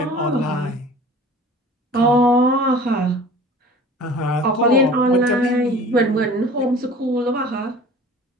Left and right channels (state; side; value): normal; both; correlation 0.44